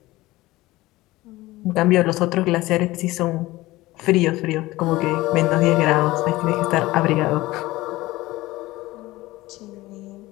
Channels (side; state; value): right; quieter; 18.7 dB